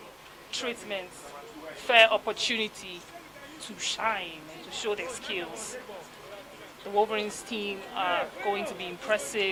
treatment, fair opportunity to shine and to show their skills. The Wolverines team are going to be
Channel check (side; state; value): both; identical; correlation 1.00